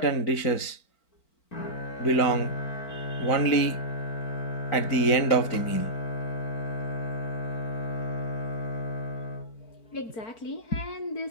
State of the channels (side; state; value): right; late; 4.4 ms